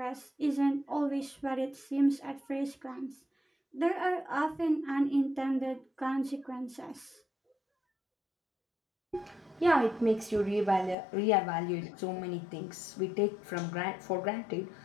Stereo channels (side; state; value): right; drops out; at 11.0 s